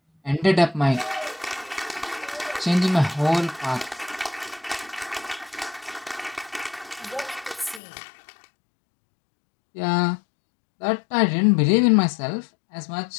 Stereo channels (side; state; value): right; drops out; at 7.8 s